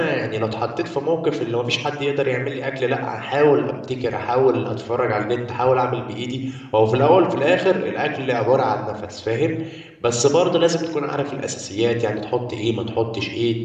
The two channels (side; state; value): both; identical; correlation 1.00